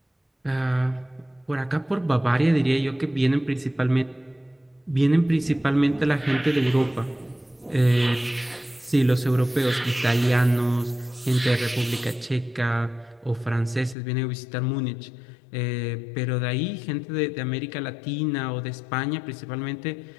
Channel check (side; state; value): right; drops out; at 14.0 s